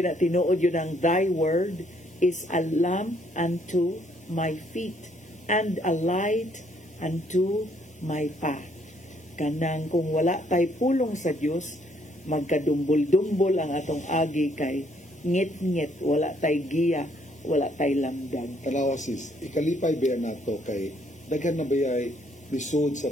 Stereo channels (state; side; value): normal; both; correlation 0.68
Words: tinuod yun ang thy word is a lamp unto my feet and a light unto my path. Kanang kung wala tay pulong sa Dios, magkadumbol-dumbol ang atong agi, kay ngit-ngit, wala tay giya, wala tay lamdag. Kanawa sis, ikalipay ba nato kay daghan na bayay lisod